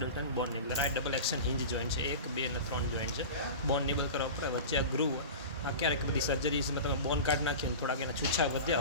બોન નિબલર. આ ડબલ એક્શન હિંજ જોઈન્ટ છે, 1, 2 અને 3 જોઈન્ટ છે. બોન નિબલ કરવા પડે, વચ્ચે આ ગ્રુવ. આ ક્યારેક બધી સર્જરીઝમાં તમે બોન કાઢ નાખ્યો ને થોડાક એના છૂછા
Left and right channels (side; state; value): both; inverted; correlation -0.31